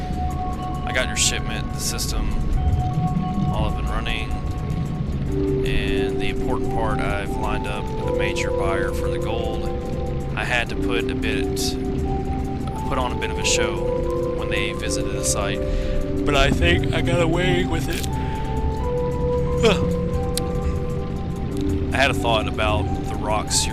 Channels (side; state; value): both; identical; correlation 1.00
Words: I got your shipment, the system, all up and running. And the important part, I've lined up a major buyer for the gold. I had to put on a bit of a show when they visited the site, but I think I got away with it. I had a thought about the rocks